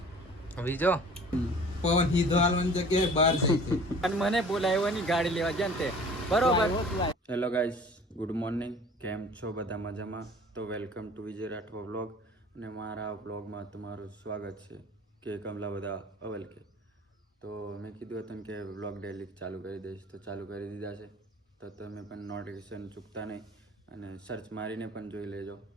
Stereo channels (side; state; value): both; normal; correlation 0.47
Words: બીજો પવન હીધો હાલવાની જગ્યાએ બહાર જાય છે અને મને બોલાવ્યો ગાડી લેવા જાય તે બરોબર. Hello guys, good morning. કેમ છો બધા? મજામાં? તો welcome to Vijay Rathwa vlog. અને મારા વ્લોગમાં તમારું સ્વાગત છે કે કમલા બધા અવલ કે. તો મેં કીધું હતું કે વ્લોગ ડેલી ચાલુ કરી દઈશ, તો ચાલુ કરી દીધા છે. તો તમે પણ નોટિફિકેશન ચૂકતા નહીં અને સર્ચ મારીને પણ જોઈ લેજો